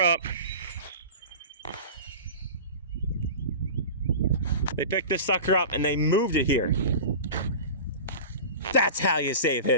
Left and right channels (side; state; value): both; inverted; correlation -0.33